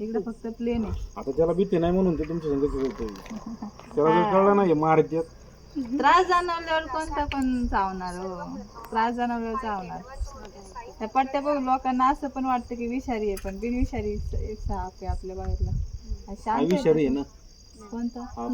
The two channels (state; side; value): identical; both; correlation 1.00